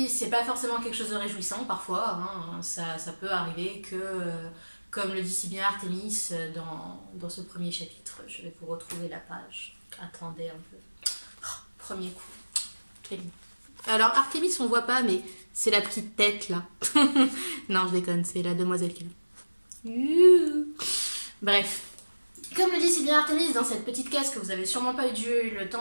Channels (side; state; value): both; inverted; correlation -1.00